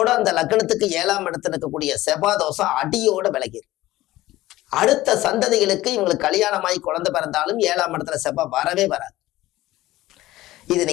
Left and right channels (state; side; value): quieter; right; 16.7 dB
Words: அந்த லக்னத்துக்கு 7ஆம் இடத்துல இருக்கக்கூடிய செவ்வாய் தோஷம் அடியோட விலகிடும். அடுத்த சந்ததிகளுக்கு இவங்களுக்கு கல்யாணமாகி குழந்தை பிறந்தாலும் 7ஆம் இடத்துல செவ்வாய் வரவே வராது. இது